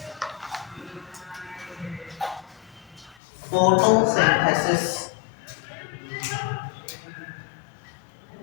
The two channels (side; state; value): right; drops out; at 3.2 s